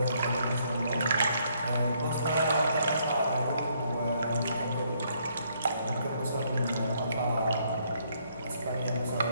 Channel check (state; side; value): inverted; both; correlation -0.70